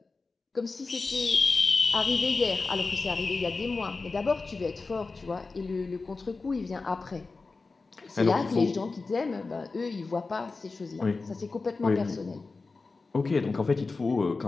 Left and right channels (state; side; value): quieter; right; 3.9 dB